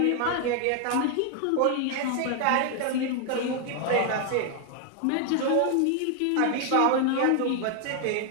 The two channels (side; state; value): both; different; correlation 0.00